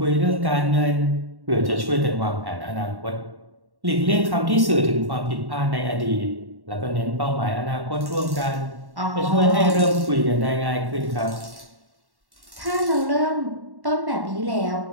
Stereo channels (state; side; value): late; left; 1.1 ms